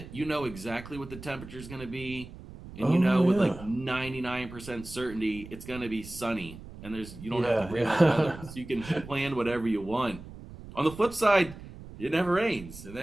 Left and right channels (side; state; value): right; noise; rumble, 15 dB below the sound